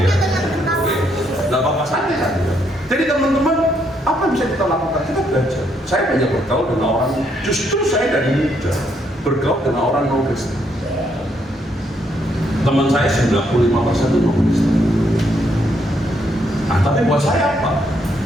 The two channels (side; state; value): both; normal; correlation 0.74